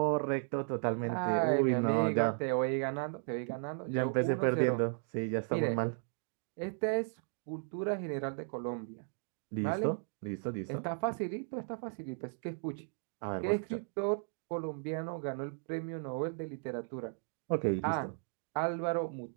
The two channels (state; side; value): silent; left; 54 dB below the other